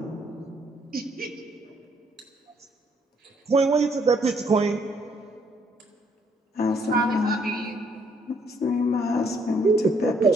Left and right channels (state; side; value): normal; both; correlation 0.68